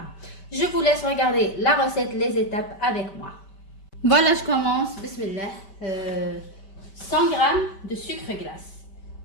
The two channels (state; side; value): late; right; 5.1 ms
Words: Je vous laisse regarder la recette, les étapes avec moi. Voilà, je commence. Bismillah. 100 grammes de sucre glace.